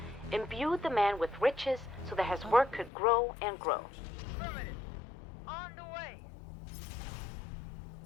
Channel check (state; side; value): drops out; right; at 2.9 s